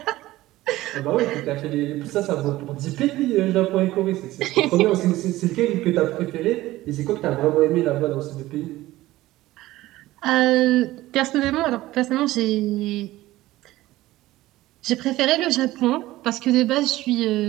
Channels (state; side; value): quieter; left; 16.9 dB